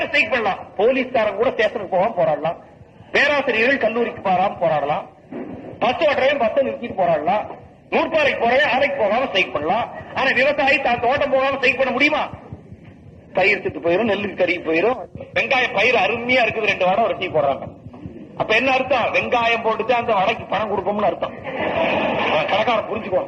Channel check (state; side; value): identical; both; correlation 1.00